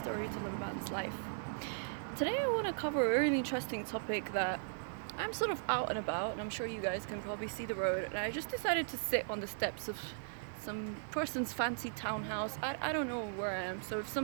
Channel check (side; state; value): left; silent; digital silence